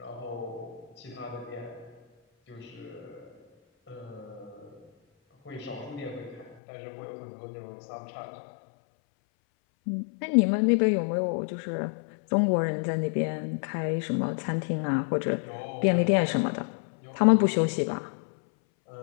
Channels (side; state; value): right; drops out; at 6.6 s